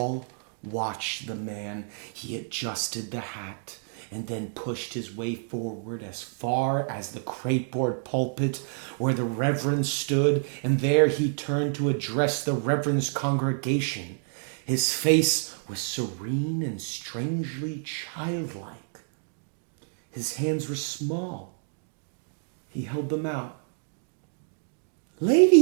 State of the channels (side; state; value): left; silent; digital silence